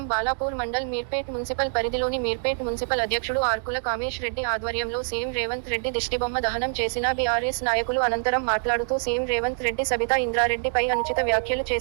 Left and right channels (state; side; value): silent; left; 56 dB below the other